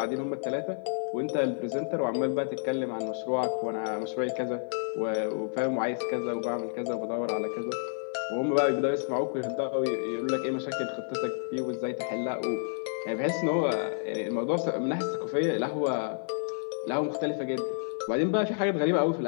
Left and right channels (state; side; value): silent; right; 57 dB below the other